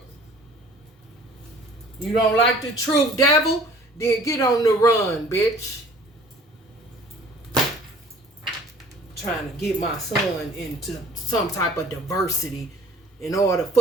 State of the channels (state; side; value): normal; both; correlation 0.51